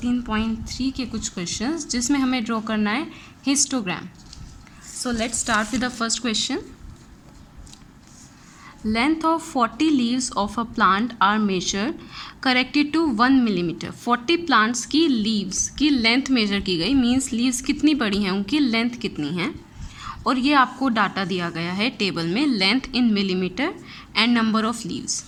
के कुछ क्वेश्चंस जिसमें हमें ड्रॉ करना है histogram. So let's start with the first question. Length of 40 leaves of a plant are measure corrected to 1 millimetre. 40 plants की लीव्स की लेंथ मेजर की गई, मीन्स लीव्स कितनी बड़ी हैं, उनकी लेंथ कितनी है, और ये आपको डाटा दिया गया है टेबल में, length in millimetre and number of leaves.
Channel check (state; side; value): identical; both; correlation 1.00